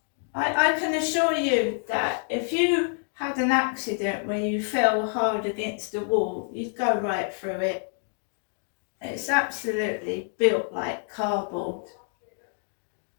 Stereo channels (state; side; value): silent; right; 60 dB below the other